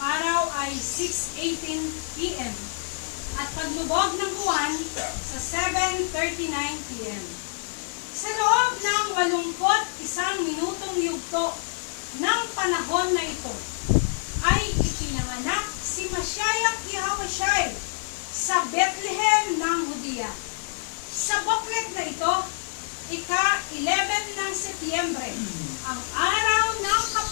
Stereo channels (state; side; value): silent; right; 57 dB below the other